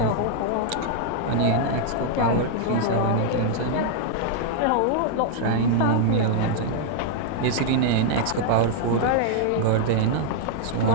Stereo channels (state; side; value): different; both; correlation -0.01